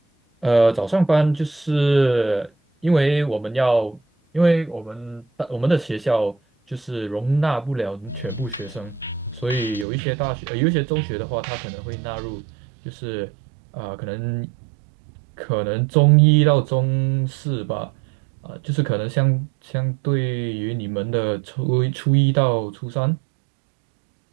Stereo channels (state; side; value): drops out; left; at 9.9 s